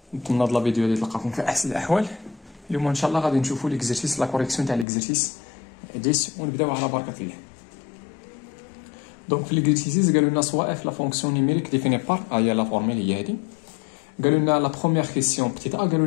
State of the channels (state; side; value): drops out; right; at 4.9 s